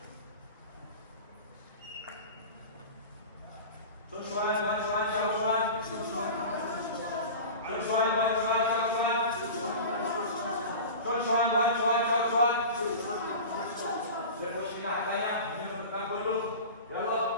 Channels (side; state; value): both; inverted; correlation -0.33